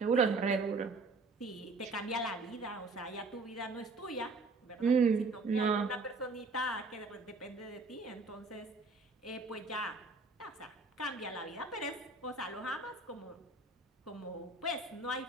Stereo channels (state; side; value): quieter; left; 3.6 dB